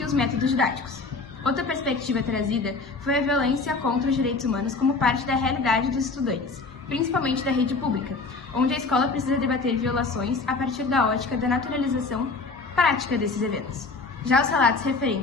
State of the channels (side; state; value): right; quieter; 3.9 dB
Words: os métodos didáticos. Outra perspectiva trazida foi a violência contra os direitos humanos como parte da realidade dos estudantes, principalmente da rede pública, onde a escola precisa debater violações a partir da ótica da naturalização prática desses eventos. Já os relatos